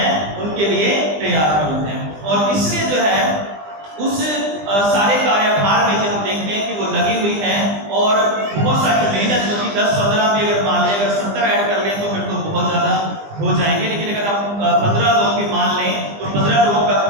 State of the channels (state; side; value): late; left; 20 ms